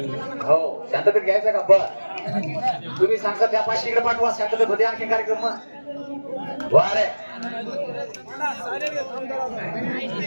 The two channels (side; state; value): both; inverted; correlation -1.00